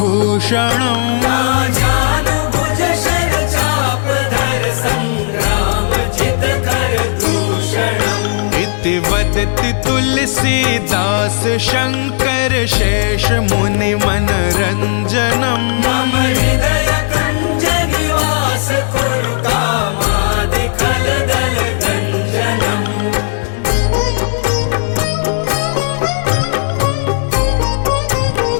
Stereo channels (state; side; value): silent; right; digital silence